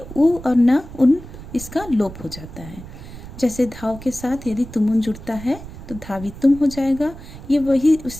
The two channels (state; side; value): noise; right; rumble, 14 dB below the sound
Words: उ और न, उन, इसका लोप हो जाता है। जैसे धाव के साथ यदि तुमुन जुड़ता है तो धावितुम हो जाएगा। ये वही